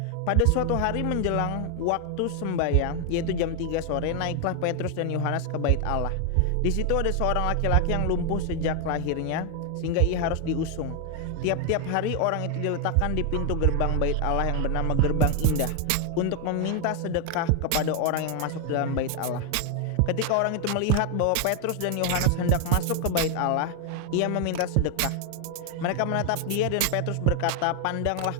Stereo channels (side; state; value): both; different; correlation 0.00